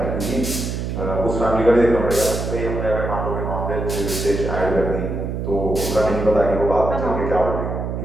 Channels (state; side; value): noise; right; hum, 3 dB below the sound